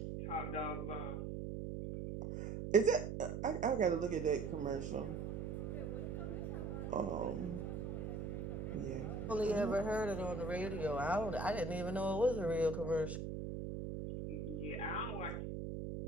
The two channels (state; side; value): noise; right; hum, 4 dB below the sound